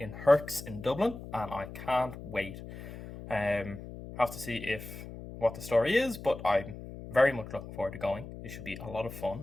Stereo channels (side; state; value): left; noise; hum, 12 dB below the sound